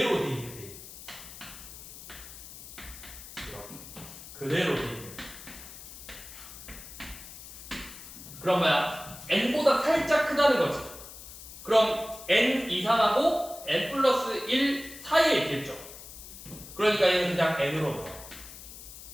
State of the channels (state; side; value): noise; left; hiss, 14 dB below the sound